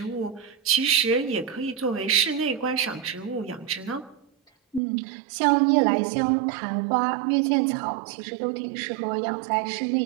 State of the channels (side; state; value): left; drops out; at 4.8 s